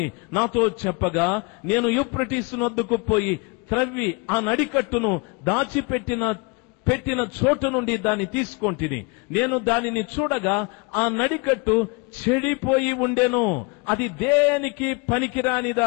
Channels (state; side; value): quieter; right; 30.3 dB